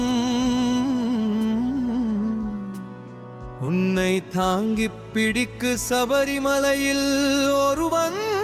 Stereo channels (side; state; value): both; identical; correlation 1.00